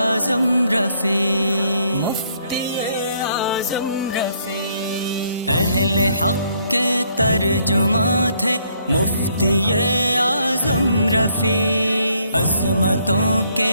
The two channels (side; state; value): both; inverted; correlation -0.69